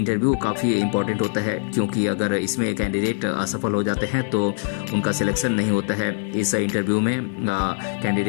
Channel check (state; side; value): silent; right; digital silence